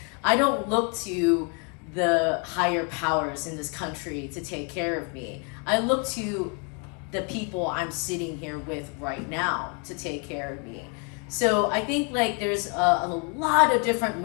I don't look to the higher powers in this country to take care of me. I look to the people I'm sitting here with right now to take care of me. So I think like there's a lot of different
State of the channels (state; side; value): quieter; right; 35.7 dB